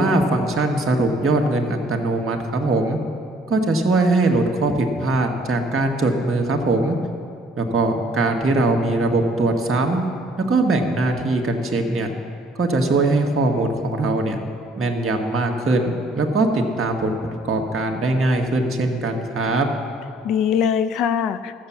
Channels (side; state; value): both; normal; correlation 0.61